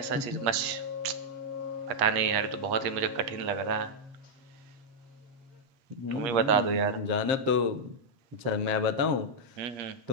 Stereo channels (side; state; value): left; late; 8.4 ms